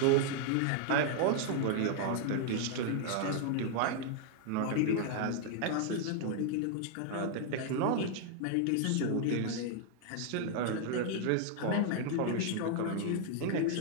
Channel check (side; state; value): both; different; correlation 0.00